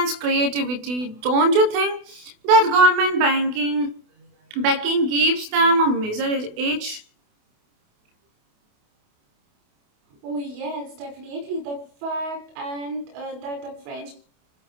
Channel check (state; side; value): late; left; 28 ms